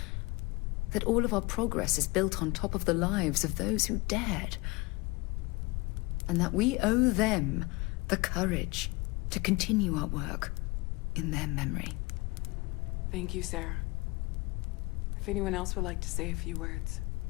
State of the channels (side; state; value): right; quieter; 24.7 dB